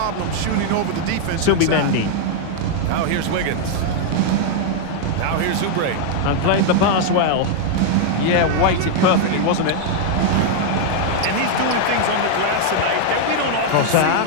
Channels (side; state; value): both; different; correlation 0.00